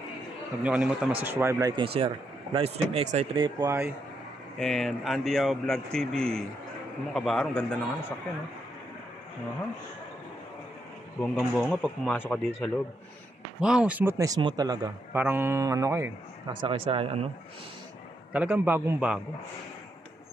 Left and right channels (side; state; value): both; normal; correlation 0.80